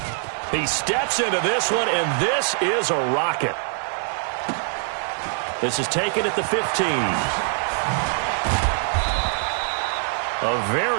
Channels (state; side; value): silent; left; 56 dB below the other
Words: He steps into this one, and this is a rocket. This is taken at the 15. A